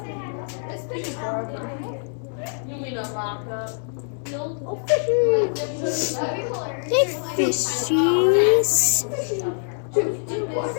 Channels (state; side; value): silent; right; 63 dB below the other